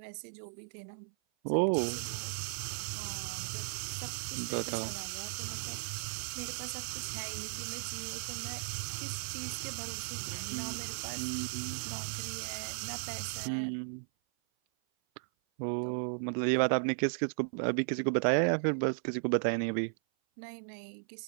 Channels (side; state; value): left; silent; 54 dB below the other